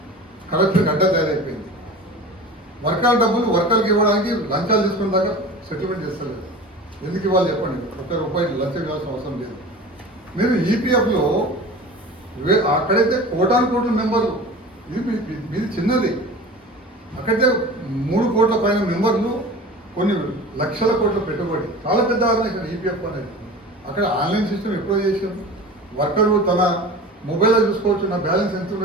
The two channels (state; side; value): normal; both; correlation 0.36